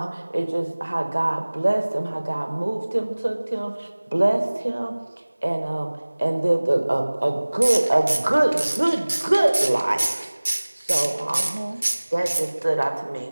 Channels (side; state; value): both; inverted; correlation -1.00